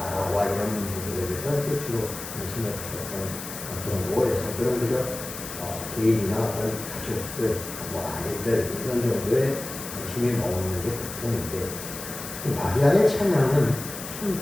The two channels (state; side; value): noise; left; hiss, 9 dB below the sound